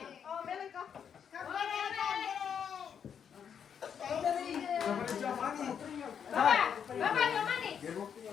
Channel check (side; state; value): right; quieter; 7.7 dB